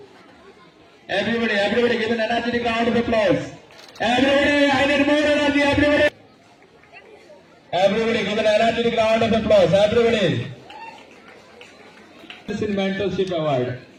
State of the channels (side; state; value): both; identical; correlation 1.00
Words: Everybody give an energetic round of applause. Everybody, I need more energy, everybody. Everybody give an energetic round of applause, everybody. In Mentorship Award.